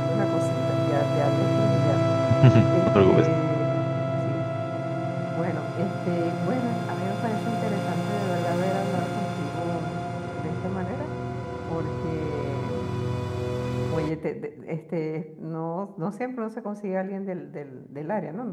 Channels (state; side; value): identical; both; correlation 1.00